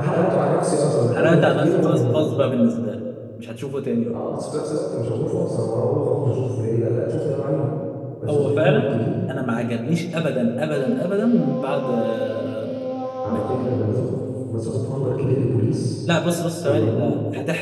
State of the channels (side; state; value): both; identical; correlation 1.00